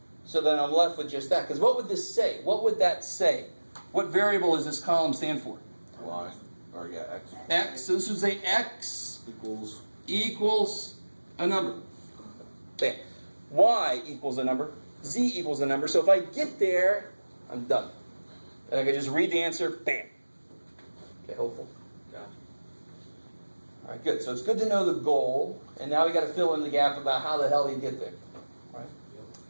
so that I'm left with just that. Because what would this say? What would that say? What variable does this column stand for? Y. Or yeah, X. X. So this would say X equals a number. Bam. Y equals a number. Z equals a number. So if I get there, I'm done. And I can just read the answer. Bam. Okay, hopeful. Gotcha. All right, good. So it's good to know the goal, and now we got to fill in the gap about how the hell you get there. Right?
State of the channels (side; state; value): both; inverted; correlation -1.00